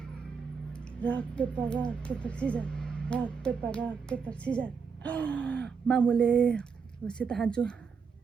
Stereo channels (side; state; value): left; quieter; 5.8 dB